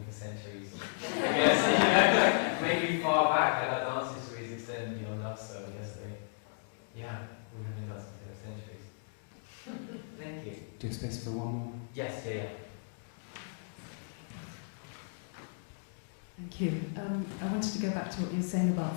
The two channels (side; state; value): right; silent; digital silence